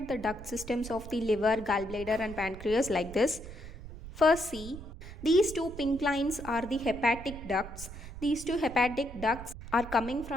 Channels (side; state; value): right; noise; rumble, 12 dB below the sound